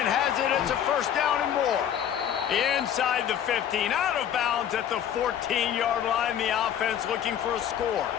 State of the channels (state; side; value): quieter; right; 9.6 dB